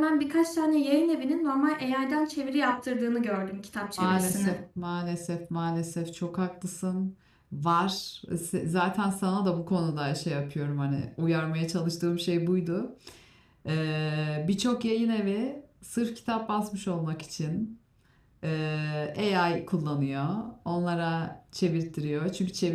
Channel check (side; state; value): both; identical; correlation 1.00